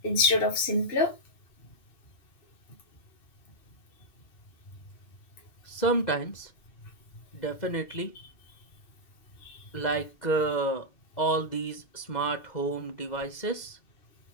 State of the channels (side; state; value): right; late; 2.0 ms